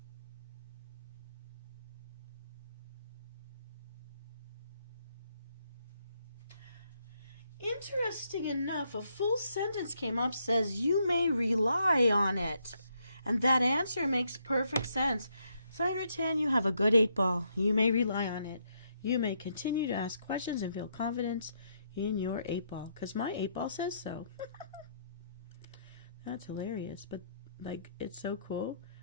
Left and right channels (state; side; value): inverted; both; correlation -0.75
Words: Interesting enough, a full sentence came up, says you may rely on it. And that answer makes perfect sense. Cyan Rattan, you have a good 8 Ball. You may rely on it. You may continue to ask questions and feel confidence in your 8 Ball. Because my 8 Ball says so. That's hilarious. But, like, it's so cool.